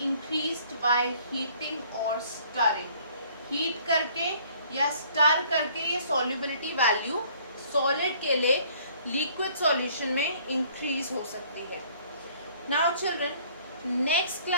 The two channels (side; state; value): both; inverted; correlation -0.58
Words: by heating or stirring। Heat करके या स्टर करके ये सॉल्युबिलिटी वैल्यू सॉलिड के लिए लिक्विड सॉल्यूशन में इंक्रीज हो सकती है। नाउ चिल्ड्रन, नेक्स्ट